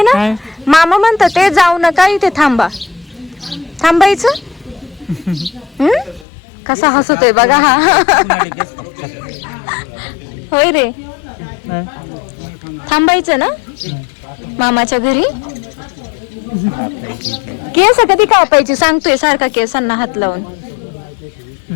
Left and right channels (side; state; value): right; drops out; at 6.2 s